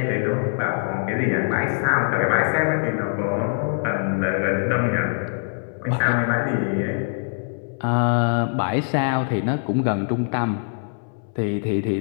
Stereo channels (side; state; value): right; silent; 63 dB below the other